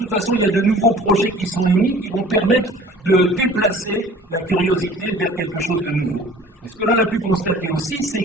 façon, il y a de nouveaux projets qui sont émis qui vont permettre de déplacer la curiosité vers quelque chose de nouveau. Et ce que l'on a pu constater aussi,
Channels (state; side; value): normal; both; correlation 0.48